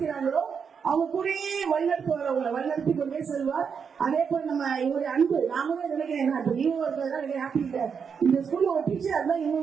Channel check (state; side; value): quieter; left; 6.5 dB